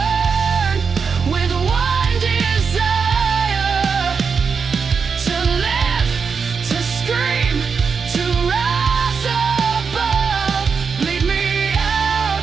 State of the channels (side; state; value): left; quieter; 5.7 dB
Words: with one desire: to live, to scream, to rise above. Bleed me